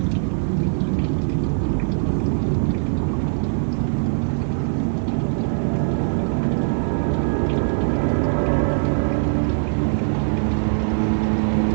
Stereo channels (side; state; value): left; silent; 65 dB below the other